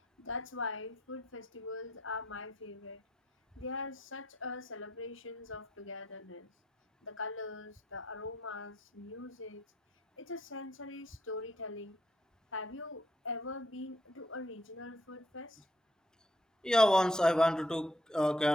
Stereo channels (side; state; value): both; normal; correlation 0.72